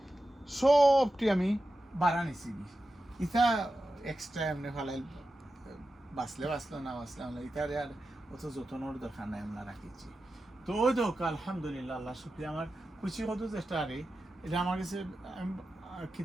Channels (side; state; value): both; normal; correlation 0.92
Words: সবটি আমি বাড়া নিছি। ইটা এক্সট্রা এমনি ফালাই বাঁচলে বাঁচলো না বাঁচলে আমরা ইটারে আর অত যত্নর দরকার নাই আমরা রাখিছি। তো ওই দোকা আলহামদুলিল্লাহ আল্লাহ শুক্রিয়া আমার খুশি হতো চেষ্টা আরে এটা আমার কাছে